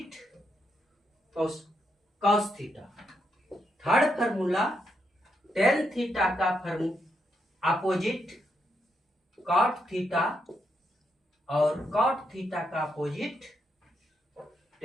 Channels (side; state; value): both; normal; correlation 0.80